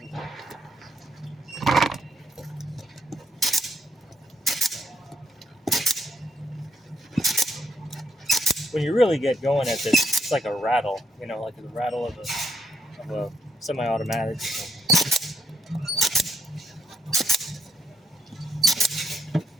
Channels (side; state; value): both; normal; correlation 0.77